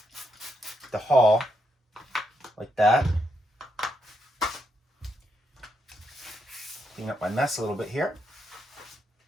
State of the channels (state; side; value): normal; both; correlation 0.80